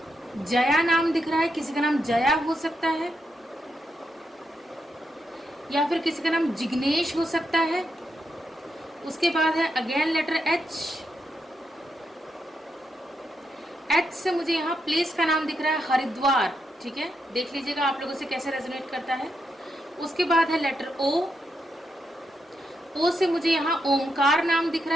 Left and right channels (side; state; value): both; normal; correlation 0.83